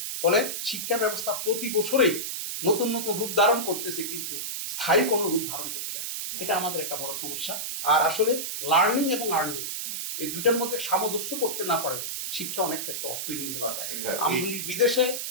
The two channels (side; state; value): right; noise; hiss, 4 dB below the sound